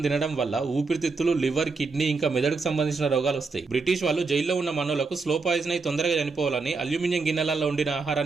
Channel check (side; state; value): left; quieter; 4.2 dB